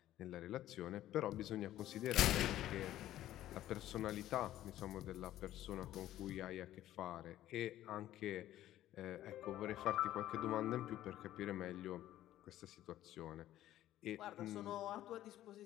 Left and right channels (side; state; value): right; quieter; 13.5 dB